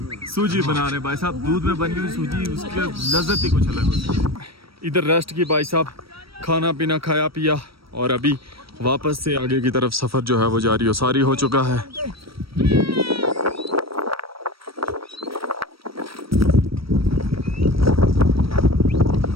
सूजी बना रहे हैं। भाई साहब दूध में बनी हुई सूजी, उसकी लज्जत ही कुछ अलग होती है। इधर रेस्ट की भाई साहब, खाना पीना खाया पिया और अभी वापस से आगे की तरफ सफ़र जो है वो जारी हो सारी हो चुका है।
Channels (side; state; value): left; late; 0.75 ms